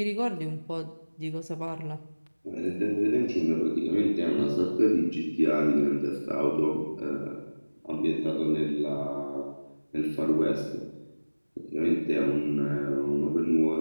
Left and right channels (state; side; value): inverted; both; correlation -1.00